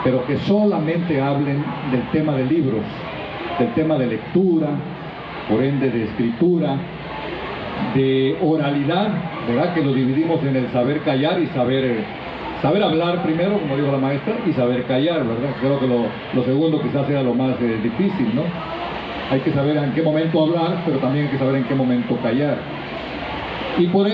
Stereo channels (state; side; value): identical; both; correlation 1.00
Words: pero que solamente hablen del tema de libros, del tema de lectura, por ende de escritura, de oralidad, ¿verdad?, que lo dividimos en el saber callar y saber hablar primero, como dijo la maestra, y saber callar, ¿verdad? Creo que lo segundo quizás sea lo más difícil, ¿no? Hay que saber en qué momento hablar, pero también hay que saber en qué momento callar. Y por